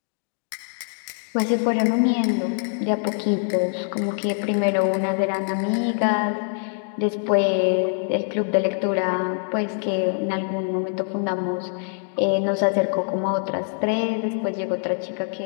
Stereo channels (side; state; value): right; silent; 59 dB below the other